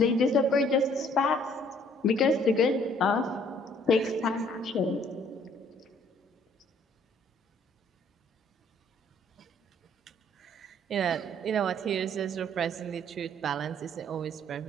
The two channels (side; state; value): both; normal; correlation 0.61